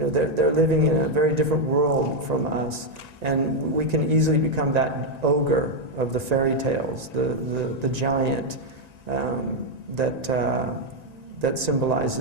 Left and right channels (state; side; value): late; left; 1.9 ms